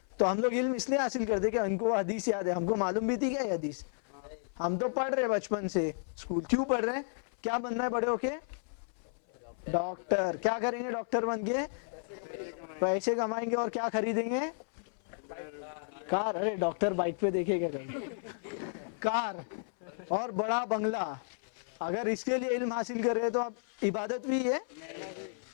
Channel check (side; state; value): right; silent; 56 dB below the other